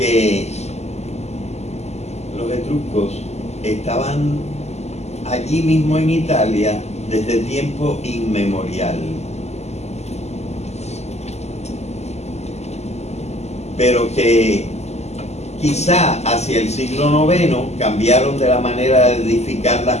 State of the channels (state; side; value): late; right; 0.32 ms